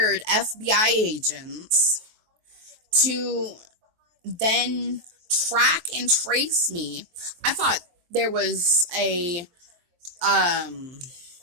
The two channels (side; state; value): left; late; 23 ms